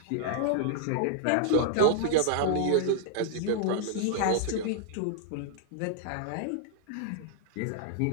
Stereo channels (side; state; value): both; different; correlation -0.01